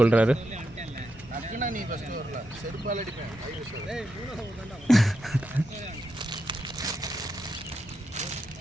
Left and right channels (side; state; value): both; normal; correlation 0.84